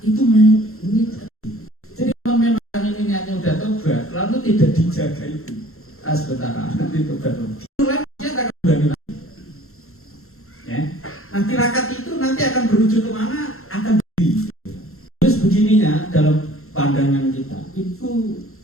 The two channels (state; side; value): late; right; 0.62 ms